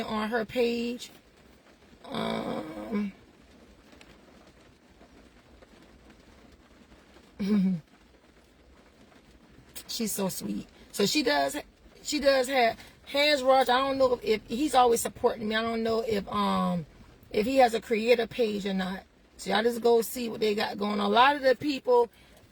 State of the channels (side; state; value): both; identical; correlation 1.00